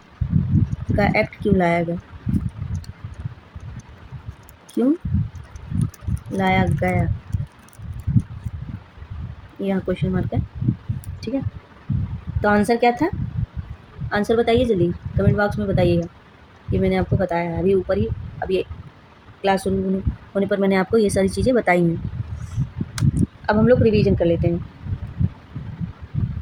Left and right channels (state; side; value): identical; both; correlation 1.00